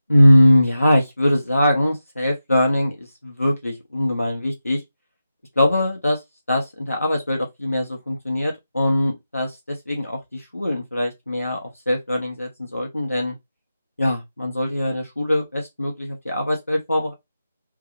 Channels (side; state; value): both; inverted; correlation -0.91